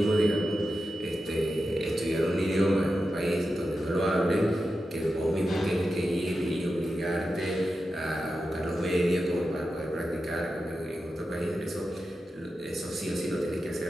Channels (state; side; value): normal; both; correlation 0.90